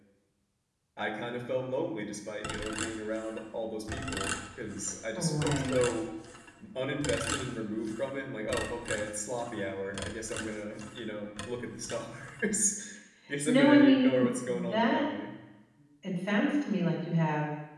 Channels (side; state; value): both; identical; correlation 1.00